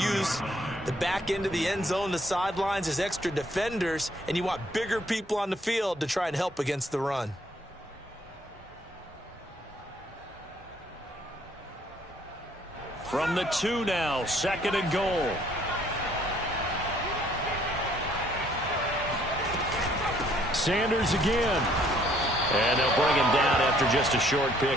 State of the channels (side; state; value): both; normal; correlation 0.64